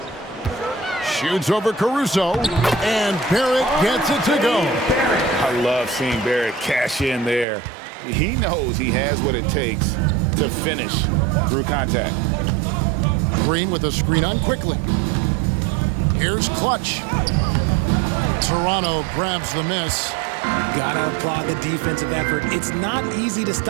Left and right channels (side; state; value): left; drops out; at 7.5 s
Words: Shoots over Caruso. And Barrett gets it to go. I love seeing Barrett cash in there. He knows he has what it takes to finish through contact. Green with a screen on quickly. Here's Clutch. Toronto grabs the miss. Gotta applaud the defensive effort. It's not easy to